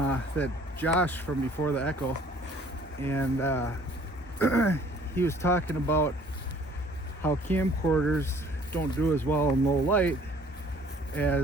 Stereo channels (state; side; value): normal; both; correlation 0.55